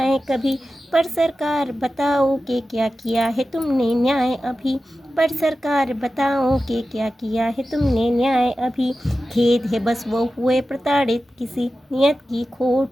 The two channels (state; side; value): normal; both; correlation 0.94